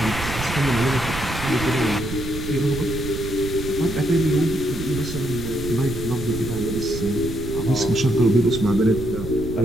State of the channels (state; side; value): noise; right; rumble, 8 dB below the sound